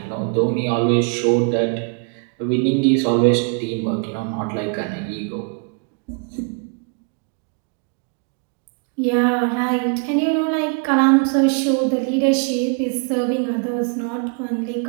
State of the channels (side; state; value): left; quieter; 36.2 dB